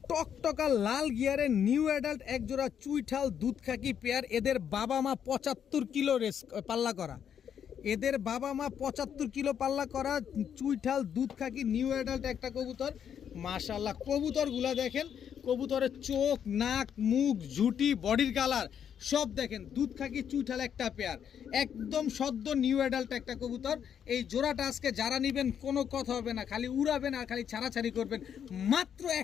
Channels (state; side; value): quieter; right; 8.5 dB